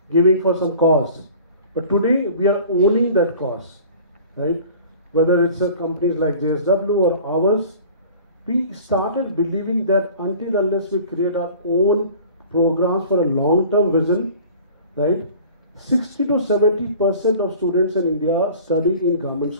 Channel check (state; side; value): inverted; both; correlation -0.45